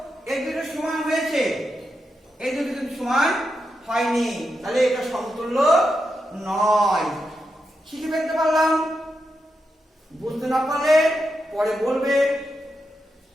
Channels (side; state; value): both; normal; correlation 0.86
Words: এই দুটো সমান হয়েছে, এই দুটো কিন্তু সমান হয়নি, তাহলে এটা সমতুল্য নয়। শিখে ফেলতে পারলাম। বুঝতে না পারলে পরে বলবে।